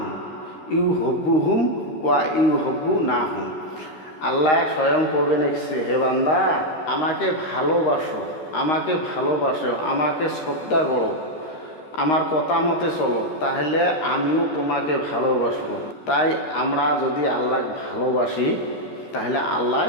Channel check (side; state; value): right; late; 13 ms